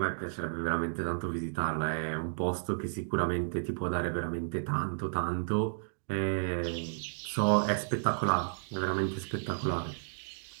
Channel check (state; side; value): silent; left; digital silence